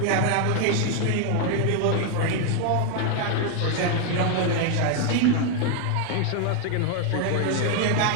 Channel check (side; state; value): both; different; correlation 0.00